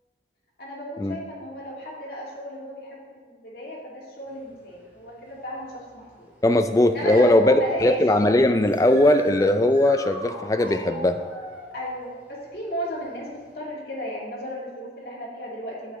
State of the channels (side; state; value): both; normal; correlation 0.65